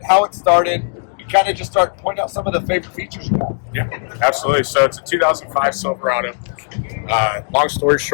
how it started. You kind of just start pointing out some of the favorite features you have. Yeah, absolutely. So it's a 2005 Silverado. Long story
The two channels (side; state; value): right; silent; 57 dB below the other